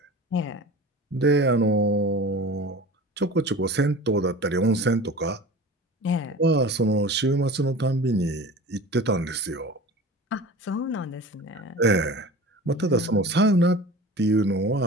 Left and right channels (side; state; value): both; normal; correlation 0.37